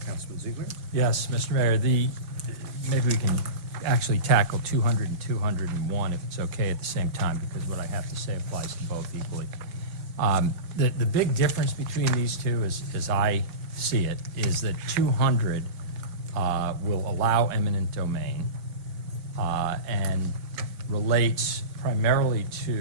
Councilman Ziegler? Yes, Mr. Mayor, maybe we can actually tackle 200 and 201 if it's okay at the same time, because what I have to say applies to both equally. The big difference between these two, as I see it, is that 200 will allow eminent domain and relates primarily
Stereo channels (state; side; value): late; left; 5.8 ms